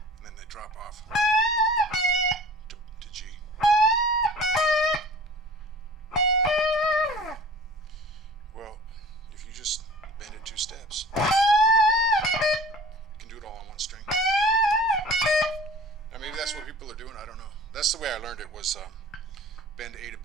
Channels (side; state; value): both; normal; correlation 0.44